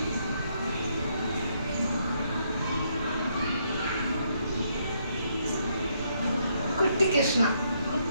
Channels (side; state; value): both; inverted; correlation -0.74